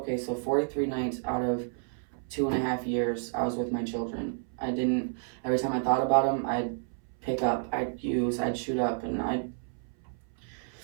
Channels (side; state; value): left; silent; 58 dB below the other